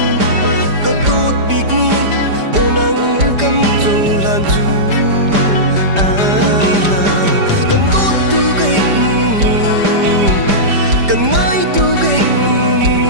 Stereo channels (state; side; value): late; left; 5.0 ms